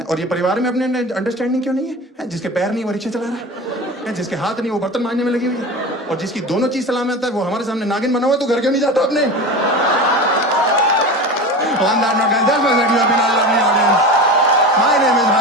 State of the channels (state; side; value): normal; both; correlation 0.29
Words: और ये परिवार में अपने अंडरस्टैंडिंग क्यों नहीं है? जिसके पैर नहीं वो रिक्शा चला रहा है, जिसके हाथ नहीं वो बर्तन मांजने में लगी हुई है, और जिसकी दोनों चीज सलामत है वो हमारे सामने नागिन बना हुआ है। तो घर क्यों नहीं जाता अपने? On that note, guys, that was it. You have been all lovely audience. My name is